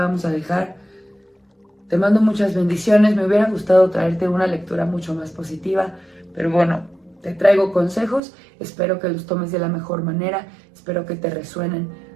a dejar. Te mando muchas bendiciones. Me hubiera gustado traerte una lectura mucho más positiva, pero bueno, te traigo consejos. Espero que los tomes de la mejor manera, espero que te resuenen.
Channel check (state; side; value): drops out; left; at 8.2 s